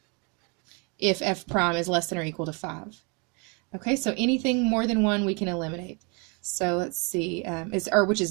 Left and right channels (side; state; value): left; quieter; 33.2 dB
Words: if f prime is less than or equal to 5. Okay, so anything more than 1 we can eliminate. So let's see, which